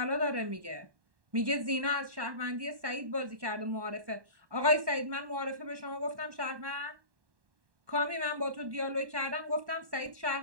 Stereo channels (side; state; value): left; late; 1.1 ms